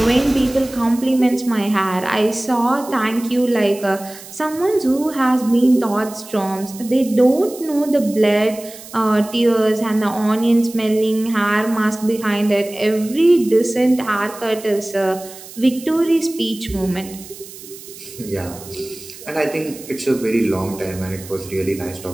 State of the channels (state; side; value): noise; right; hiss, 16 dB below the sound